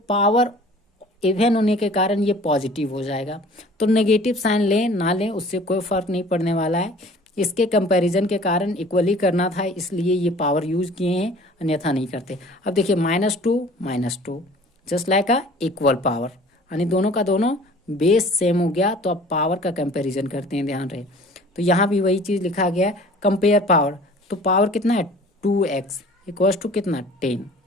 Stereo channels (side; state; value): both; normal; correlation 0.48